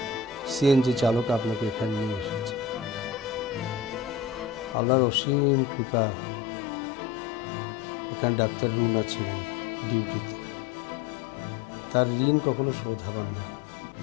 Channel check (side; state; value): right; drops out; at 4.8 s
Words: সিএনজি চালক আপনাকে এখানে নিয়ে এসেছে। আল্লাহর অসীম কৃপা, এখানে ডাক্তার রুনা ছিলেন ডিউটিতে। তার ঋণ কখনো শোধ হবার নয়।